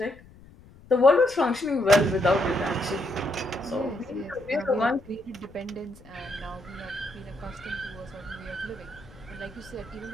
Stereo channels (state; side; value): noise; left; rumble, 22 dB below the sound